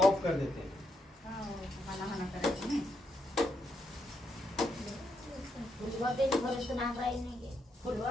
ऑफ कर देते हैं। फुलवा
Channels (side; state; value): both; normal; correlation 0.79